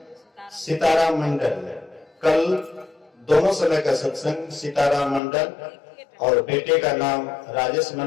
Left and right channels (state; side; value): drops out; right; at 5.2 s